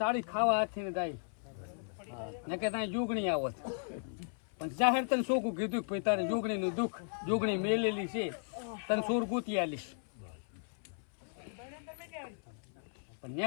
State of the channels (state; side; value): silent; right; 54 dB below the other